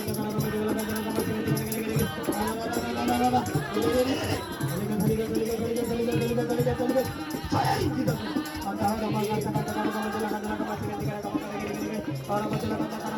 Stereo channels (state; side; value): identical; both; correlation 1.00